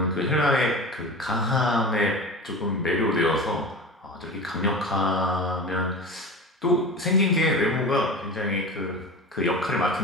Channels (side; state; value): both; normal; correlation 0.32